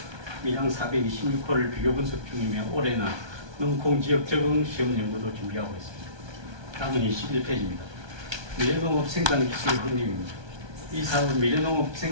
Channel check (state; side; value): late; left; 1.2 ms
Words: 밀양 426호를 비교 분석 중이며 올해는 농콩 지역 적응 시험 연구도 준비하고 있습니다. 다음은 21페이지입니다. 미래농업 생산기술 확립입니다. 이 사업은 미래농업